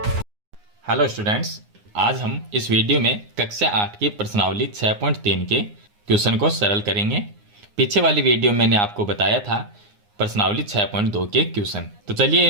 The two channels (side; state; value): left; late; 9.7 ms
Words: हेलो स्टूडेंट्स, आज हम इस वीडियो में कक्षा 8 की प्रश्नावली 6.3 के क्वेश्चन को सरल करेंगे। पीछे वाली वीडियो में मैंने आपको बताया था प्रश्नावली 6.2 के क्वेश्चन। तो चलिए